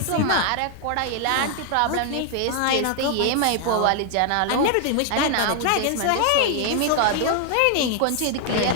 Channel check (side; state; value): both; different; correlation 0.00